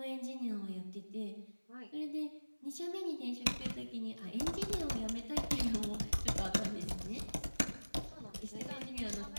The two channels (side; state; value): both; inverted; correlation -1.00